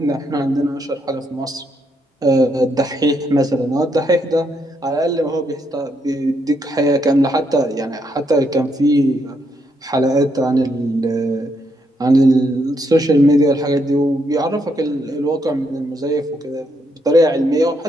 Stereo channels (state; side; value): normal; both; correlation 0.76